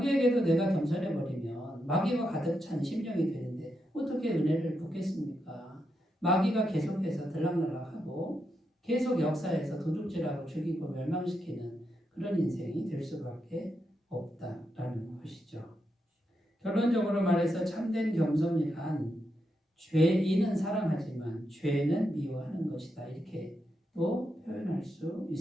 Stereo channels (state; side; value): normal; both; correlation 0.84